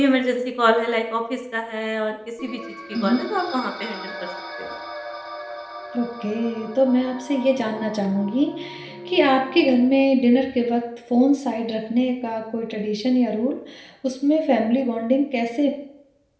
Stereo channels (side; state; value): both; identical; correlation 1.00